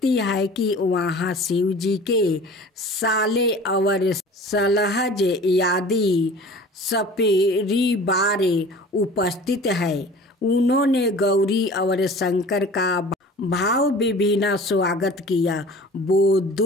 है कि वहाँ शिव जी के साले और सलहज आदि सपरिवार उपस्थित है। उन्होंने गौरी और शंकर का भाव विभिन्न स्वागत किया। वो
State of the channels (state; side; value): normal; both; correlation 0.43